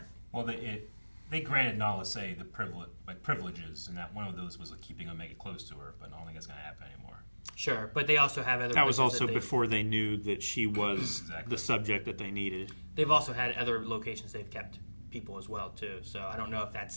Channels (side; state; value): both; inverted; correlation -1.00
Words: Well, they granted Nala Se the privileges, and that one of those was keeping Omega close to her, but I don't think it's going to happen anymore. Sure, but they also have other. That was places also that before they knew that she was Exactly. the subject that they needed. They've also had other locations they've kept people as well too. So I don't know if that's